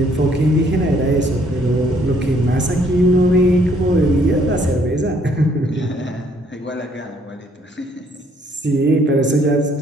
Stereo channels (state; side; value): normal; both; correlation 0.65